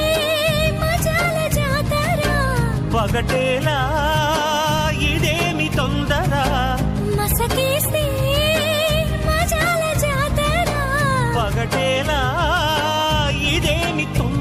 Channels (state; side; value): identical; both; correlation 1.00